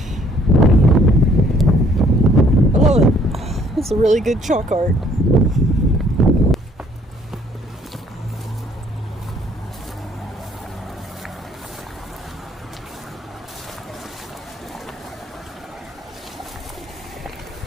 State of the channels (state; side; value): normal; both; correlation 0.62